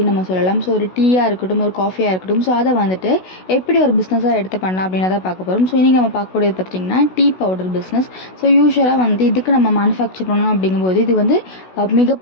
நம்ம சொல்லலாம். ஸோ ஒரு டீயாக இருக்கட்டும், ஒரு காஃபியாக இருக்கட்டும். ஸோ அதை வந்துட்டு எப்படி ஒரு பிஸ்னஸாக எடுத்து பண்ணலாம் அப்படின்றத பார்க்க போகிறோம். ஸோ இன்றைக்கி நம்ம பார்க்கக்கூடியது பார்த்திங்கன்னா டீ பவுடர் பிஸ்னஸ். ஸோ யூஸ்வலாக வந்து இதுக்கு நம்ம மேனுஃபேக்சர் பண்ணணும் அப்படிங்கும்போது இது வந்து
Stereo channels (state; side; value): late; right; 16 ms